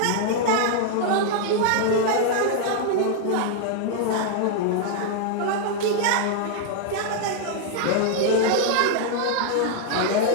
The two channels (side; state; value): both; different; correlation -0.01